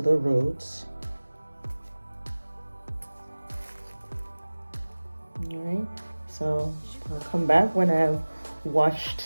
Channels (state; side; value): inverted; both; correlation -1.00